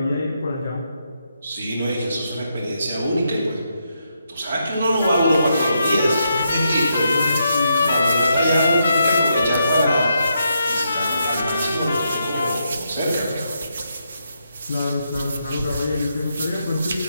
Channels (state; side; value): inverted; both; correlation -0.81